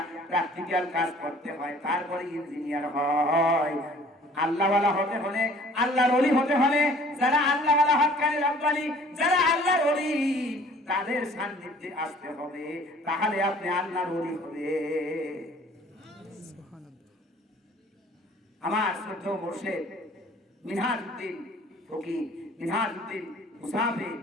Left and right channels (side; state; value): both; normal; correlation 0.53